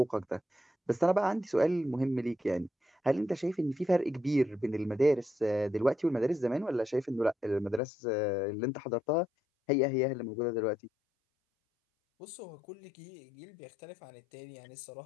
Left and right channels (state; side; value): drops out; right; at 7.8 s